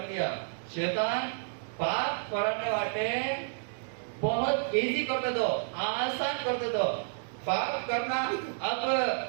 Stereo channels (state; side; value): silent; left; 57 dB below the other